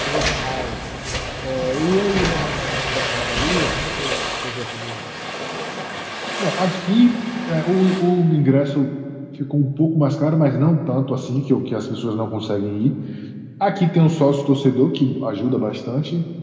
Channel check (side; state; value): both; identical; correlation 1.00